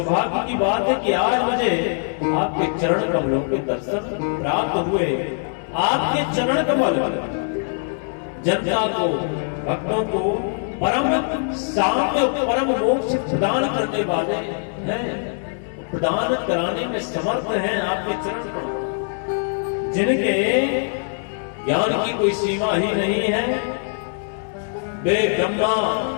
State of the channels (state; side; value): silent; right; digital silence